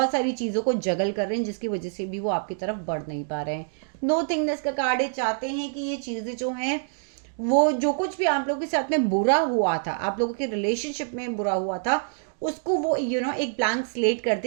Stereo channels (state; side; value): silent; left; digital silence